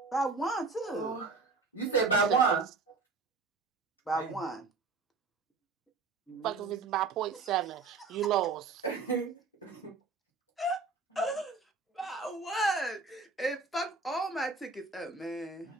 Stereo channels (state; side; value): quieter; left; 4.3 dB